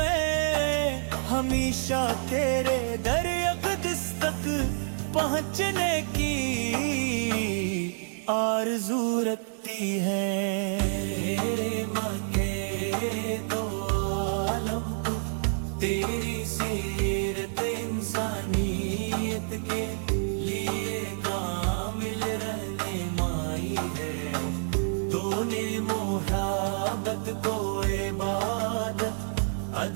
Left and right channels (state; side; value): silent; left; digital silence